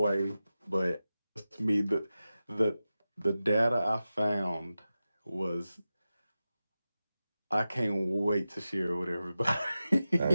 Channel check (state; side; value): inverted; both; correlation -0.94